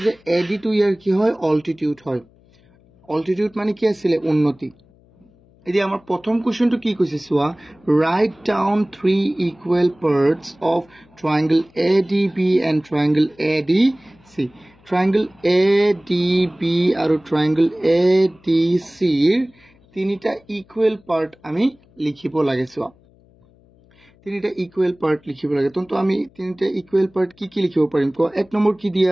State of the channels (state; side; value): noise; left; hum, 30 dB below the sound